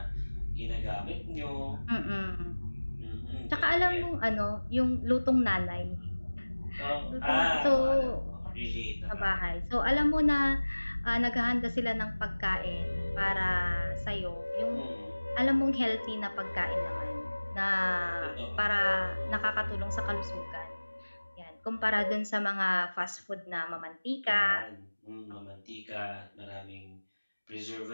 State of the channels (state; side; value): inverted; both; correlation -1.00